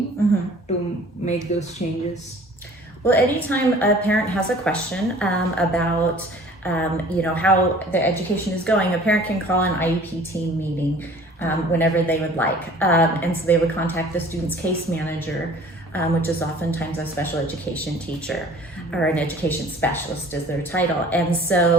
to make those changes? Well, anytime a parent has a question about how the education is going, a parent can call an IEP team meeting whenever they would like. And so they would contact the student's case manager, which is oftentimes a special education teacher or an education specialist is their title. And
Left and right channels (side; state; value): both; normal; correlation 0.49